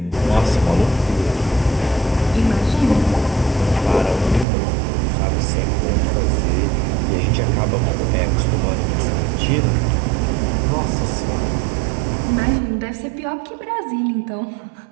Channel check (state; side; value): drops out; left; at 4.5 s